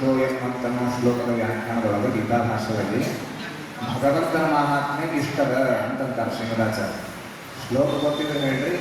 ಅಂತನ್ನೋ ಶ್ಲೋಕದ ವ್ಯಾಖ್ಯಾನದೊಳಗೆ ಗೀತಾ ಭಾಷೆಯಲ್ಲಿ ಭಗವಂತನ ಮಹಾತ್ಮೆ ಇಷ್ಟದ ಅಂತಂತಾರೆ ಶ್ರೀಮದಾಚಾರ್ಯ. ಶ್ಲೋಕ ಗೊತ್ತಿದ್ರೆ ಹೇಳ್ರಿ,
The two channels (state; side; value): identical; both; correlation 1.00